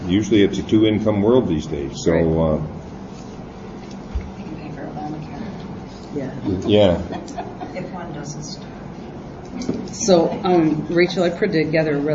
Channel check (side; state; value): both; identical; correlation 1.00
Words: usually a 2-income world these days. So Right. You can pay for Obamacare. Yeah. If one doesn't start. So, Rachel, I put together a